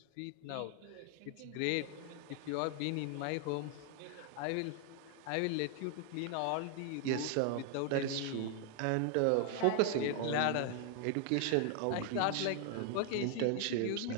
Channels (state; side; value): different; both; correlation 0.00